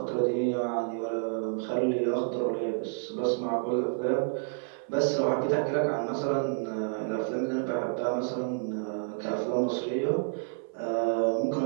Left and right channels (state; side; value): silent; left; 56 dB below the other